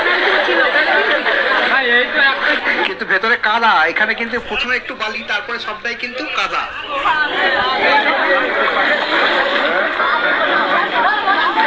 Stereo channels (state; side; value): identical; both; correlation 1.00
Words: কিন্তু ভেতরে কাদা। এখানে কিন্তু প্রথমে একটু বালি, তারপরে সবটাই কিন্তু কাদা।